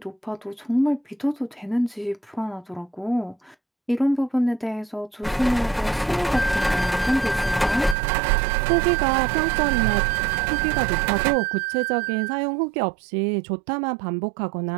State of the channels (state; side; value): drops out; left; at 8.0 s